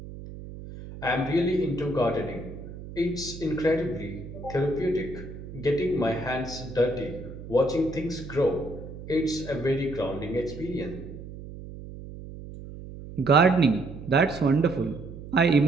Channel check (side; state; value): right; noise; hum, 13 dB below the sound